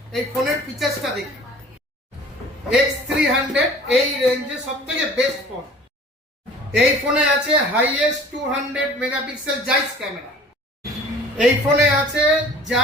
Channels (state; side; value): normal; both; correlation 0.47